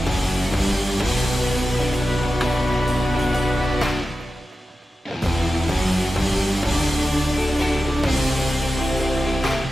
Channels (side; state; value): both; normal; correlation 0.93